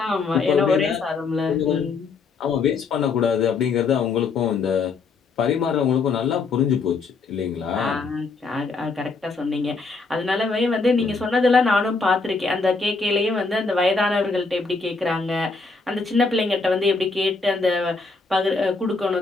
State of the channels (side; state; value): right; quieter; 4.2 dB